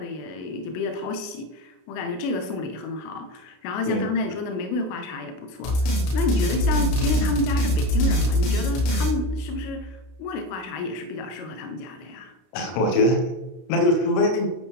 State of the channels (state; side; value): late; right; 32 ms